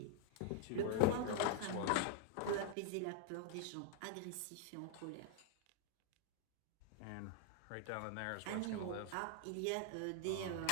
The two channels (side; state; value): both; different; correlation 0.00